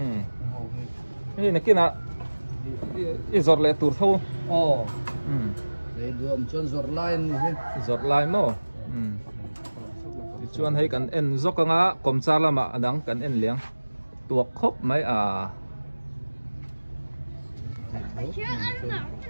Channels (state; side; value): inverted; both; correlation -1.00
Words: cái này kia là giọt lệ tụt thâu để đuổi cho giọt line này giọt line mà chuan hay cần en giọt cái ngã cầm cha là mà đắng cần en liang tuột khóc mấy